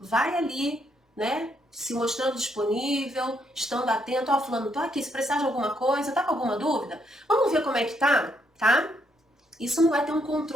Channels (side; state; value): both; normal; correlation 0.74